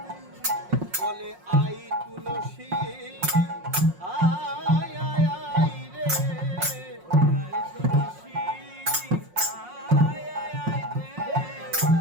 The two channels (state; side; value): late; left; 5.5 ms